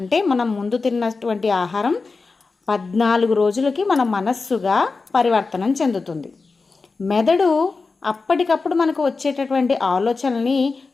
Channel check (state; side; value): quieter; right; 4.2 dB